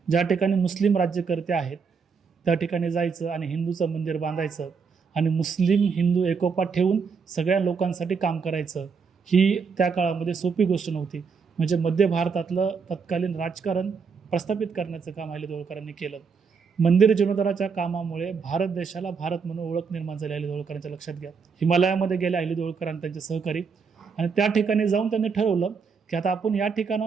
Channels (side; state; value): left; quieter; 5.6 dB